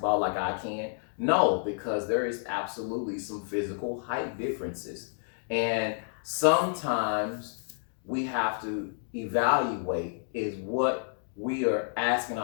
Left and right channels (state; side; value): silent; right; digital silence